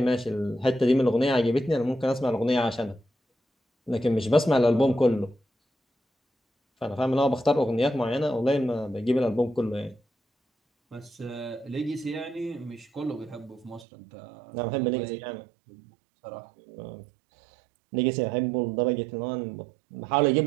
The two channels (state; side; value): drops out; left; at 13.9 s